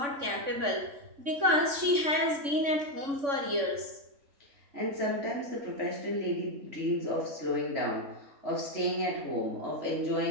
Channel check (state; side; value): late; left; 3.6 ms